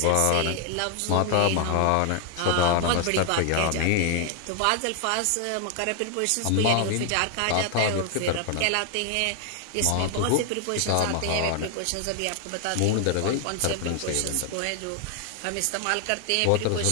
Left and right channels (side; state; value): both; different; correlation 0.00